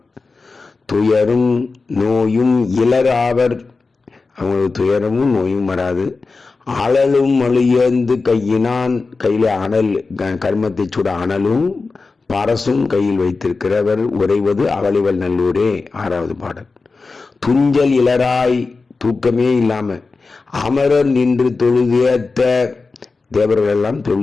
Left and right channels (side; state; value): right; quieter; 4.1 dB